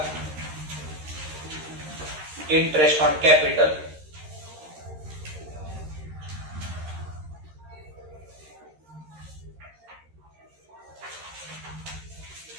इंटरेस्ट ऑन कॅपिटल.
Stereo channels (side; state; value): left; late; 13 ms